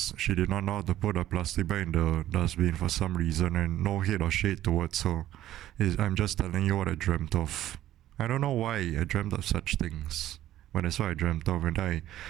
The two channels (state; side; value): quieter; left; 13.2 dB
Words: she did not know how to put a plastic bag in the dustbin for some reason, and no hate or shade towards her. I'm just telling you what I dreamt of. I don't know why I dreamt of such things. But that's what I dreamt of, and I